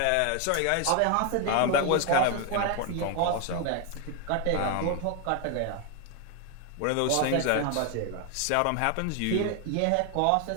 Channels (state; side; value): different; both; correlation 0.01